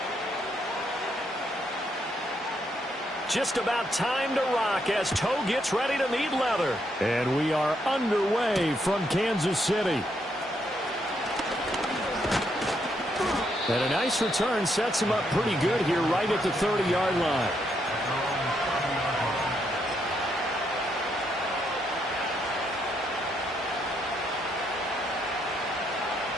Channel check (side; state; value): both; normal; correlation 0.76